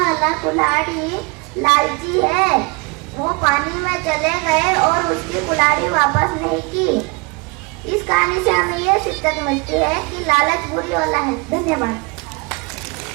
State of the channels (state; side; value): quieter; left; 28.5 dB